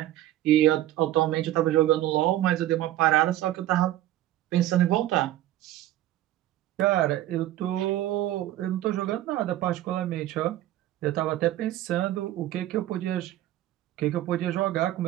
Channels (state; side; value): quieter; left; 14.0 dB